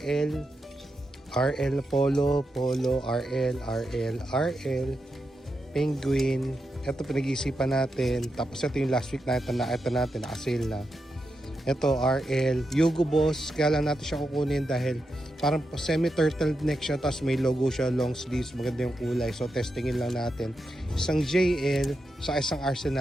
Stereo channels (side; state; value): both; normal; correlation 0.87